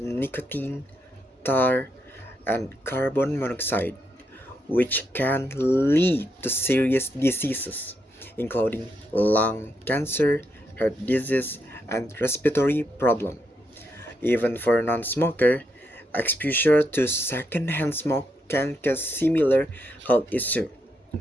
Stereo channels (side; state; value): both; normal; correlation 0.80